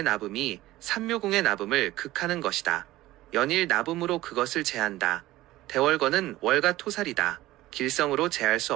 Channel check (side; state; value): left; quieter; 16.6 dB